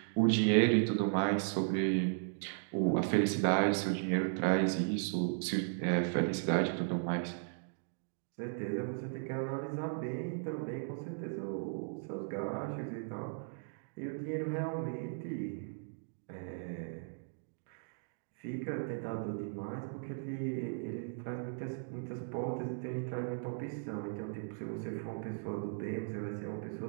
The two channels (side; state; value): left; silent; digital silence